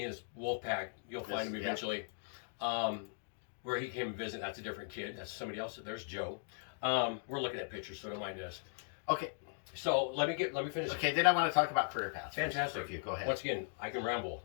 and his wolf pack, you'll find him eventually. Where he came and visit, that's a different kid. That's somebody else. There's Joe. We're looking at pictures, so don't mind us. Okay. So let me finish. Okay, then I want to talk about career paths. Fantastic. If you go ahead. Once again, I can ramble.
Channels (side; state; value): right; silent; digital silence